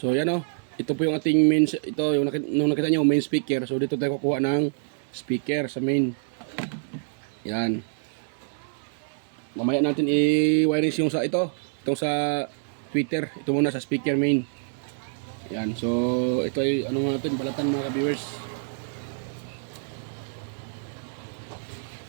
yan ito po yung ating main, ito yung nung nakita nyo main speaker. So dito tayo kukuha ng speaker sa main. Yan. Mamaya natin i-wirings yung sa itong sa Twitter. Ito muna sa speaker main. Yan. So ito ay natin balatan mga ka-viewers.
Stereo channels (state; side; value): silent; left; digital silence